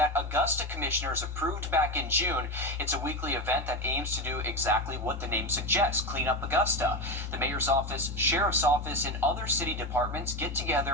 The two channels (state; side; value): normal; both; correlation 0.18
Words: Augusta commissioners approved back in June. It's a weekly event that aims to do exactly what the name suggests, clean up Augusta. The mayor's office, sheriff's office, and other city departments get